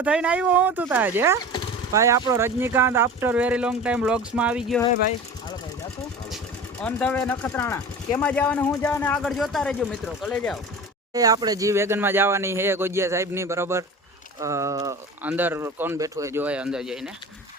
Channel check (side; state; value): both; normal; correlation 0.35